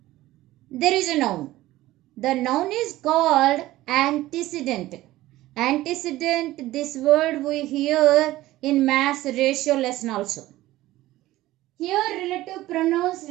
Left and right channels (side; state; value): left; quieter; 16.5 dB